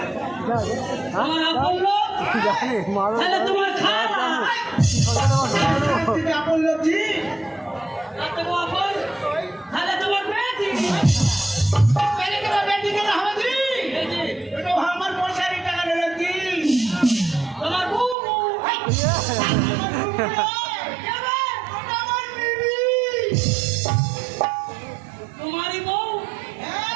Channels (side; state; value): left; drops out; at 18.2 s